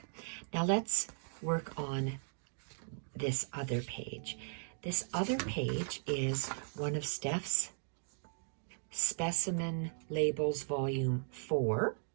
Now let's work on this other page. This other page is one of Steph's Specimen Labels Volume 4.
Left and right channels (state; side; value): silent; left; digital silence